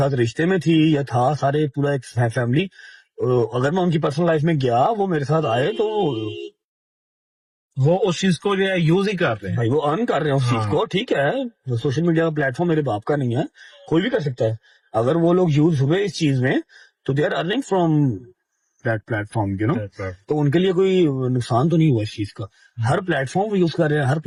रिश्ते में थी या था, सारे पूरा एक फैमिली, अगर मैं उनकी पर्सनल लाइफ में गया, वो मेरे साथ आए तो वो उस चीज को जो है यूज ही कर रहे हैं भाई, वो अर्न कर रहे हैं उस चीज को, ठीक है। सोशल मीडिया का प्लेटफॉर्म मेरे बाप का नहीं है, कोई भी कर सकता है। अगर वो लोग यूज हुए इस चीज में तो they are earning from that platform, you know. तो उनके लिए कोई नुकसान तो नहीं हुआ इस चीज का। हर प्लेटफॉर्म वो यूज कर रहे हैं, हर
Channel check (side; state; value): both; identical; correlation 1.00